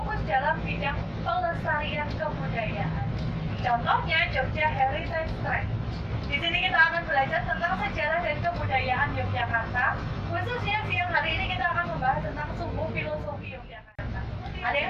dalam bidang pelestarian kebudayaan. Contohnya Jogja Heritage Track. Di sini kita akan belajar tentang sejarah dan kebudayaan Yogyakarta. Khususnya siang hari ini kita akan membahas tentang sumbu filosofi Yogyakarta. Ada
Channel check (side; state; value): both; identical; correlation 1.00